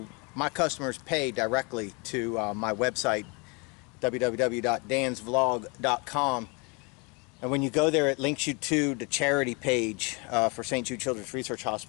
my customers pay directly to my website, www.dansvlog.com. And when you go there, it links you to the charity page for St. Jude Children's Research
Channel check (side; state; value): right; quieter; 30.6 dB